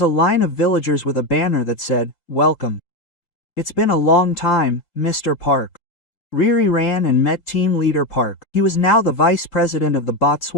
a line of villagers with a banner that said, "Welcome. It's been a long time, Mr. Park." Riri ran and met team leader Park. He was now the vice president of the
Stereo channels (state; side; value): late; right; 3.7 ms